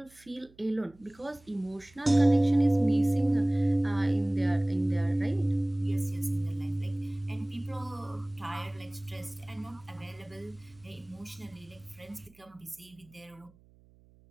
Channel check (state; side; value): noise; right; hum, 28 dB below the sound